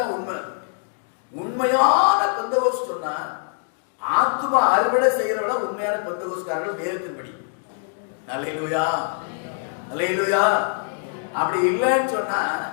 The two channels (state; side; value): silent; right; 63 dB below the other